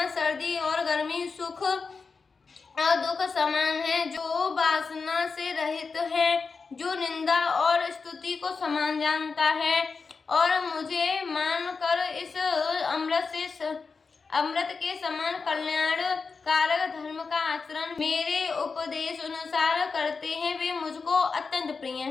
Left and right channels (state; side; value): quieter; right; 4.8 dB